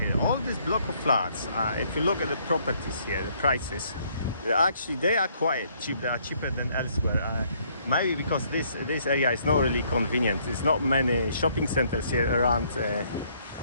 All this block of flats. If you look at the properties here, the prices, they are quite cheap. They are cheaper than elsewhere. Maybe because this area is not really convenient. There's not many shopping centers here around.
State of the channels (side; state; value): both; inverted; correlation -0.66